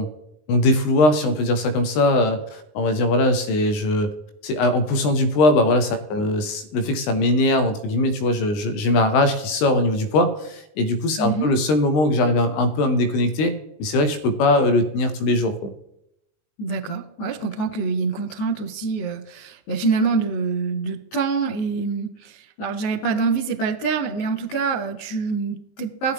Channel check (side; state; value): right; late; 20 ms